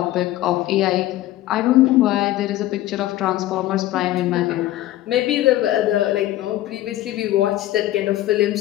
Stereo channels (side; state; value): right; quieter; 15.0 dB